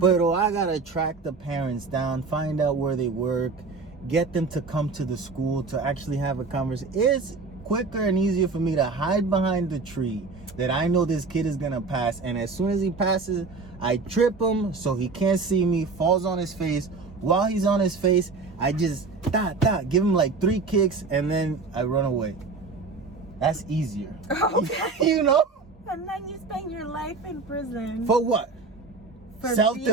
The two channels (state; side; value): quieter; left; 4.2 dB